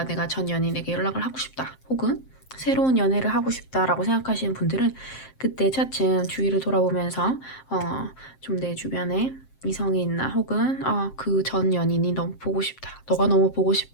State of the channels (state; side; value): late; right; 7.6 ms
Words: 내가 전 연인에게 연락을 하고 싶다. 혹은 새로운 연애를 하고 싶다라고 생각하시는 분들은 그때 차츰 주위를 돌아보면서 좀 내 주변에 이성이 있나 혹은 그 전 연인이 너무 보고 싶다. 너가 너무 보고